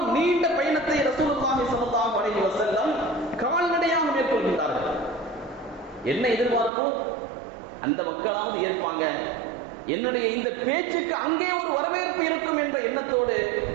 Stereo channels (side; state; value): left; drops out; at 6.7 s